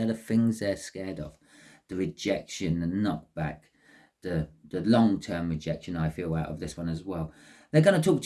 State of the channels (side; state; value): both; identical; correlation 1.00